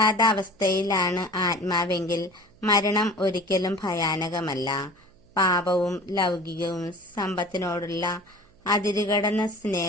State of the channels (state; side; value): noise; right; hum, 30 dB below the sound